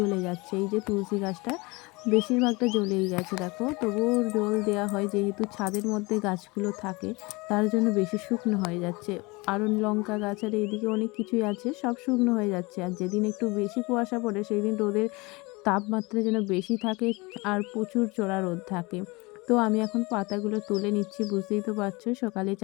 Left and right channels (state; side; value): quieter; right; 25.1 dB